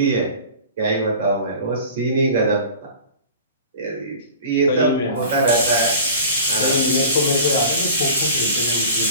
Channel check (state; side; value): inverted; both; correlation -0.39